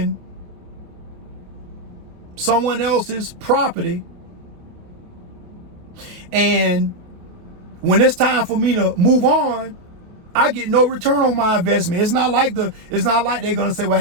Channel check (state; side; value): late; left; 28 ms